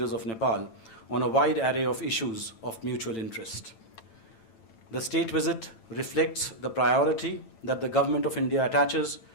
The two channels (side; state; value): right; late; 9.0 ms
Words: of Nepal on a wide array of issues of mutual interest. The state visit reflects the priority that the Government of India attaches